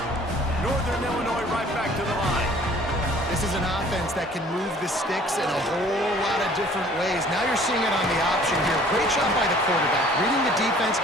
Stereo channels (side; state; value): both; normal; correlation 0.53